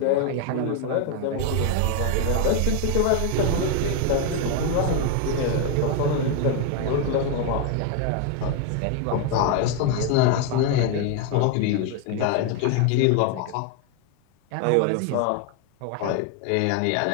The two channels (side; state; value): both; different; correlation 0.01